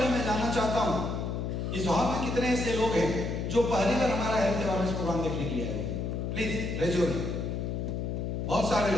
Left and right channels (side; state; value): left; noise; hum, 2 dB below the sound